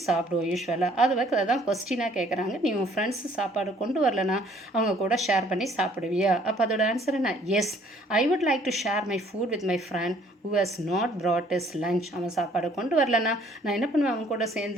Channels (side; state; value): both; normal; correlation 0.60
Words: சாப்பிடுவோம் யூஸ்வலாக. அதான் கொஸ்டினாக கேட்குறாங்க, நீ உன் ஃப்ரெண்ட்ஸ் சாப்பாடு கொண்டு வரலன்னா அவங்க கூட ஷேர் பண்ணி சாப்பிடுவியா? அப்போ அதோட ஆன்சர் என்ன, yes, I would like to share my food with my friend who has not brought his lunch. அவன் சாப்பாடு கொண்டு வரலன்னா நான் என்ன பண்ணுவேன், அவங்க கூட